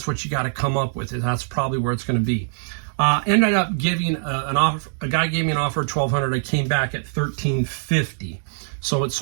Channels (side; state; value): left; silent; digital silence